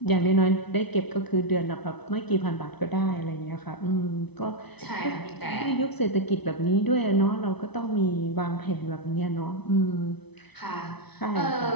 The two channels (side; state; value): right; late; 0.99 ms